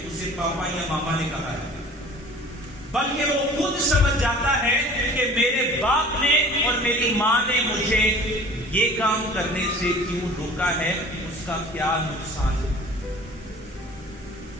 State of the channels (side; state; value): both; normal; correlation 0.45